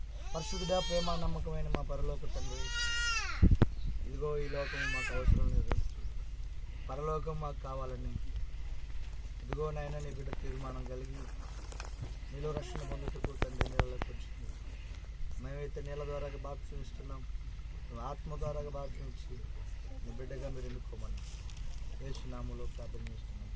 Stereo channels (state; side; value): identical; both; correlation 1.00